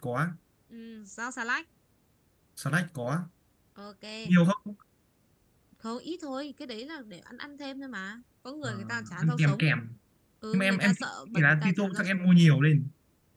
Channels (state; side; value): identical; both; correlation 1.00